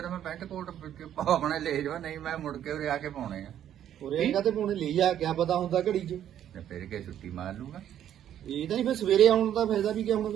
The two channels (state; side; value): quieter; left; 10.6 dB